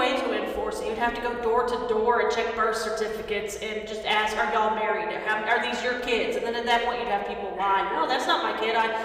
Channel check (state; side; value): identical; both; correlation 1.00